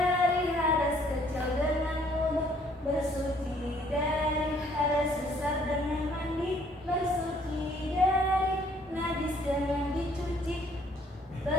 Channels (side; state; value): both; normal; correlation 0.62